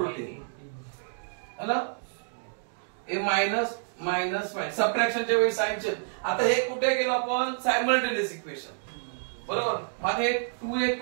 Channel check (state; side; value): silent; left; digital silence